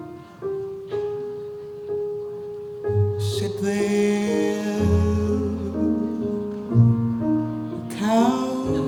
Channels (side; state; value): both; identical; correlation 1.00